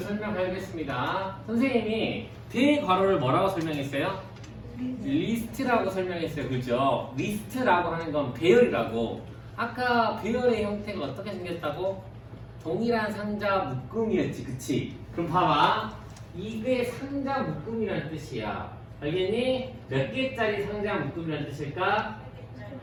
선생님이 대괄호를 뭐라고 설명했어요? 리스트라고 설명했어요. 그죠? 리스트라고 하는 건 배열이라고. 아까 배열의 형태가 어떻게 생겼다고? 동일한 상자 묶음이었지. 그치? 그럼 봐봐. 이게 상자 묶음이라는 뜻이야. 알겠니? 몇 개짜리 상자 묶음이라는 뜻일까?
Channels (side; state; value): both; identical; correlation 1.00